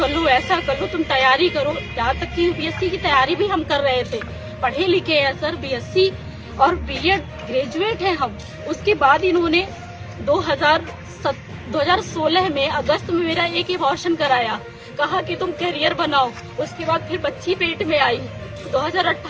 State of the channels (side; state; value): both; identical; correlation 1.00